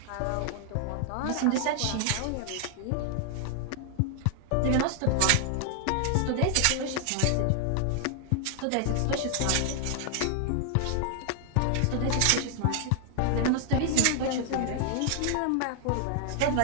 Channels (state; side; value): different; both; correlation 0.00